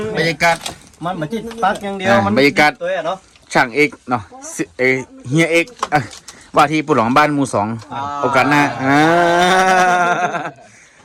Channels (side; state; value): both; identical; correlation 1.00